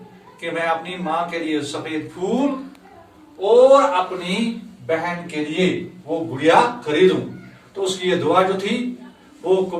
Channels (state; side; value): identical; both; correlation 1.00